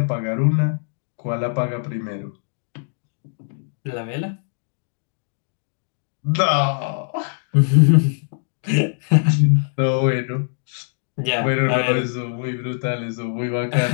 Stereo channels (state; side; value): silent; right; digital silence